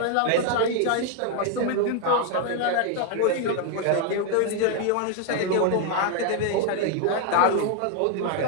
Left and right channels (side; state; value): both; different; correlation 0.00